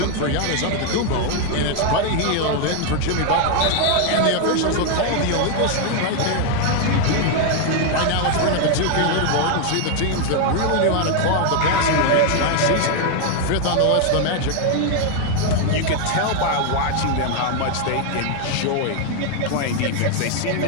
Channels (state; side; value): different; both; correlation 0.01